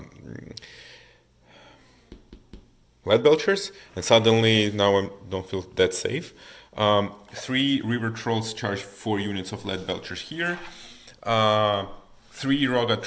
lead belchers, and suddenly now I don't feel that safe. 3 river trolls charge 4 units of lead belchers here. 3 Roga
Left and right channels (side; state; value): both; identical; correlation 1.00